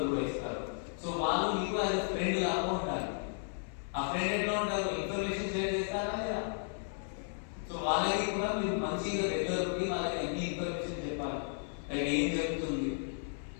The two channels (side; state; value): right; silent; 55 dB below the other